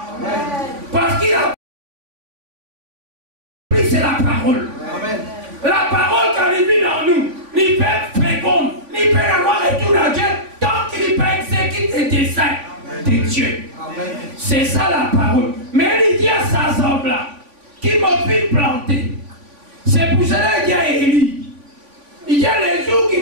Parce que la pluie, c'est la parole. La parole, quand elle vit dans nous, il peut être féconde, il peut avoir retour à Dieu tant qu'il peut exécuter des desseins de Dieu. C'est ça la parole. Mais il dit à sa semble là, qui m'a fait planter. C'est pour cela qu'il y a Élie. Il y a les jours qui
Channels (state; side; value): late; left; 3.5 ms